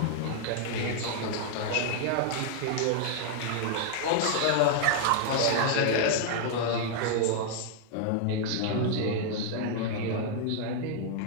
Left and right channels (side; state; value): both; different; correlation -0.01